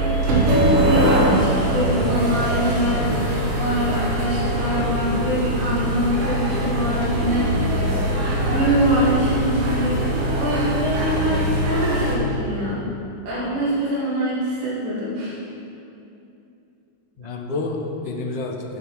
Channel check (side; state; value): left; late; 19 ms